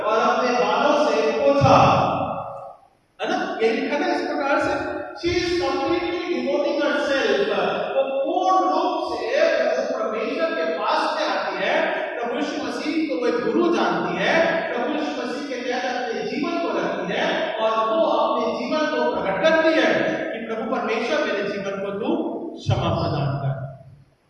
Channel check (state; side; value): identical; both; correlation 1.00